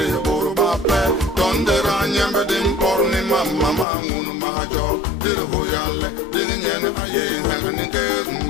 Mama ngunu majo dir hoyalle dir nyene baye ngani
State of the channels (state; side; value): drops out; right; at 3.9 s